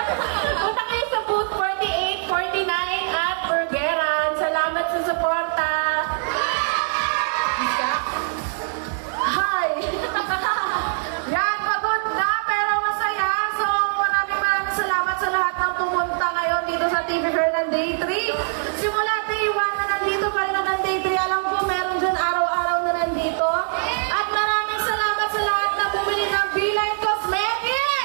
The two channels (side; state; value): left; silent; digital silence